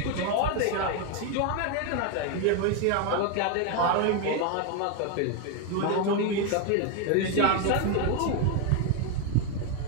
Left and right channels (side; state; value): both; different; correlation 0.01